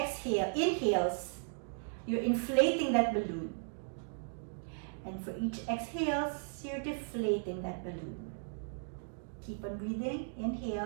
you're inflating that balloon. And for each exhales, you're deflating that balloon. Keep on breathing.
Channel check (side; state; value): left; silent; digital silence